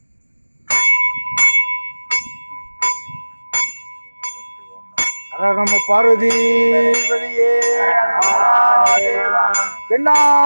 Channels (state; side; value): inverted; both; correlation -1.00